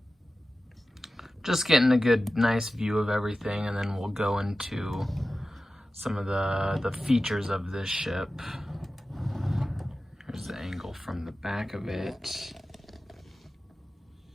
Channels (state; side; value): normal; both; correlation 0.94